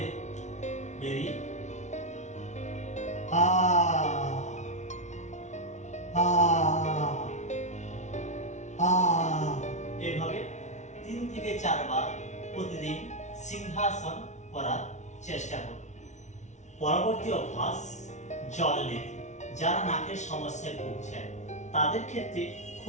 বেরিয়ে এভাবে 3 থেকে 4 বার প্রতিদিন সিংহাসন করার চেষ্টা করুন। পরবর্তী অভ্যাস জল নীতি। যারা নাকের সমস্যায় ভুগছেন তাদের ক্ষেত্রে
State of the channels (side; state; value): right; late; 0.34 ms